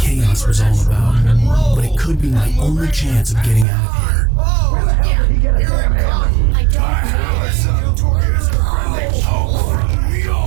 was all about, but it could be my only chance of getting out of here. Where the hell did he get a damn hammer? I don't know. Here's a friendly poke from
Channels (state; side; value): drops out; left; at 3.7 s